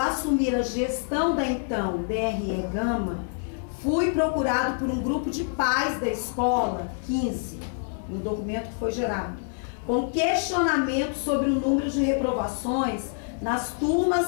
assumir a gestão da então DRE Gama, fui procurado por um grupo de pais da escola, 15, no documento que foi gerado, com questionamento sobre o número de reprovações nas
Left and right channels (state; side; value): silent; right; 61 dB below the other